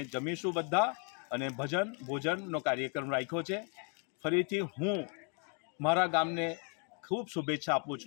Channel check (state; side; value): quieter; right; 39.4 dB